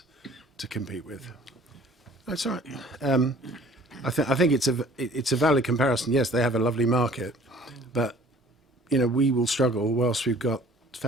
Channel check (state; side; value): normal; both; correlation 0.52